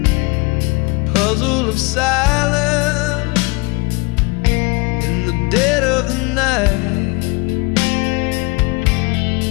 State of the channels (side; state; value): right; quieter; 25.9 dB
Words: Puzzle of silence in the dead of the night.